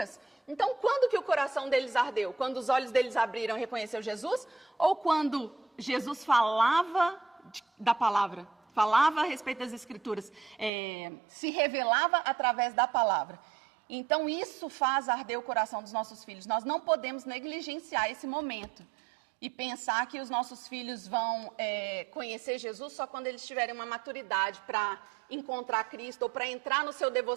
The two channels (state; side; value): drops out; left; at 10.7 s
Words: Então, quando que o coração deles ardeu? Quando os olhos deles abriram e reconheceu Jesus? Ou quando Jesus falava da palavra? Falava a respeito das Escrituras? Se revelava através da palavra? Então, isso faz arder o coração dos nossos filhos. Nós não podemos negligenciar esse momento e pensar que os nossos filhos vão conhecer Jesus só quando eles tiverem uma maturidade para encontrar Cristo ou para entrar no seu